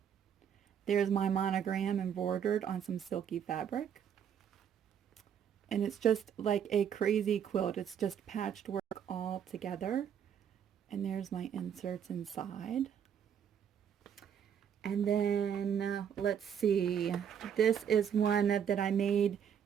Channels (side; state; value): left; quieter; 8.4 dB